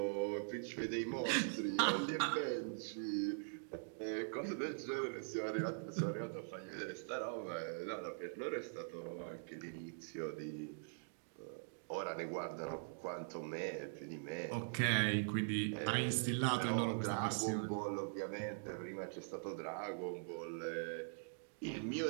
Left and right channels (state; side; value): silent; left; digital silence